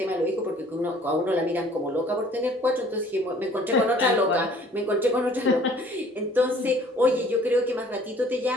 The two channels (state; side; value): normal; both; correlation 0.54